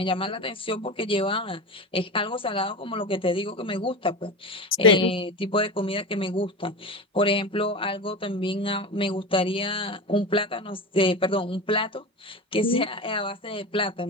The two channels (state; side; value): normal; both; correlation 0.25